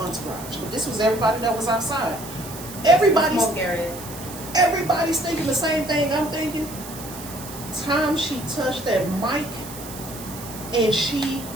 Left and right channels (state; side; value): noise; right; hiss, 13 dB below the sound